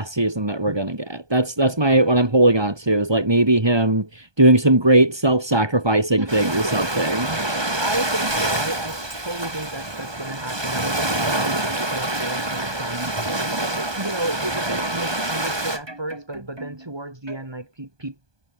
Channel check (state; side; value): late; left; 1.2 ms